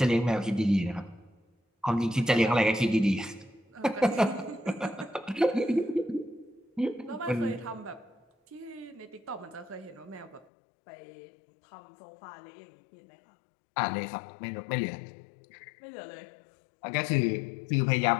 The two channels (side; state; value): right; drops out; at 10.5 s